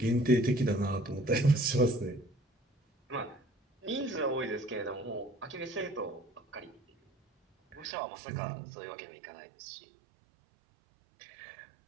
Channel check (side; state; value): left; drops out; at 8.0 s